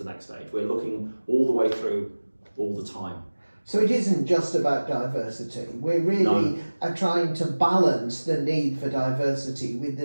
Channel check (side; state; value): both; inverted; correlation -1.00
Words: next stage. We're looking all the way through all the time. So it isn't just about diversity. We're really trying to balance the need for diversity with